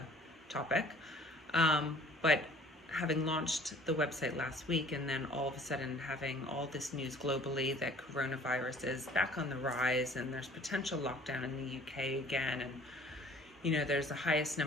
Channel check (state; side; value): normal; both; correlation 0.52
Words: topic. But having launched the website last week and then all of a sudden having all this news globally that coronavirus is back on the rise and there's potential lockdown in the UK again, and there's the highest